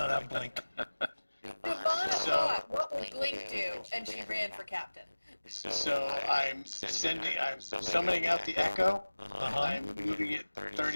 have Blink. Devana So- thought, what will Blink do? And she ran for captain. So I'm summoning out the Echo. I'm moving it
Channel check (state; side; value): inverted; both; correlation -1.00